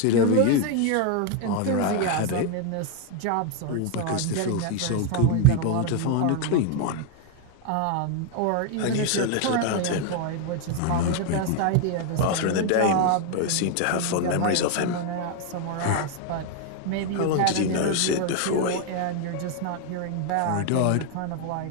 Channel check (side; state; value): both; different; correlation 0.01